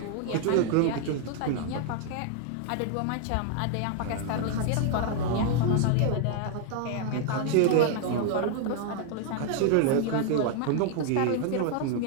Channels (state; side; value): different; both; correlation 0.00